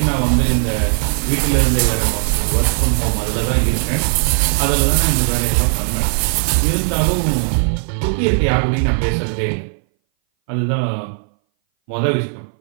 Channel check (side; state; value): left; silent; 61 dB below the other